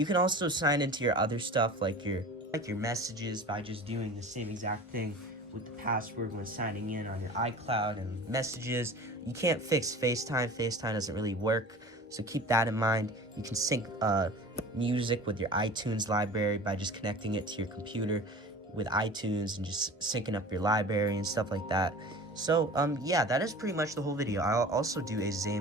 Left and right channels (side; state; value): both; normal; correlation 0.39